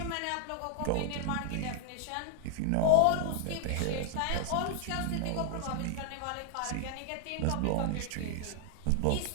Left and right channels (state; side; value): different; both; correlation -0.01